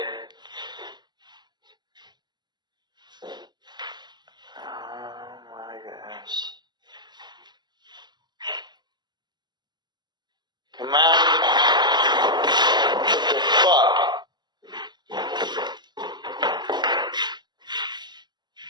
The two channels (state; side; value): late; left; 0.21 ms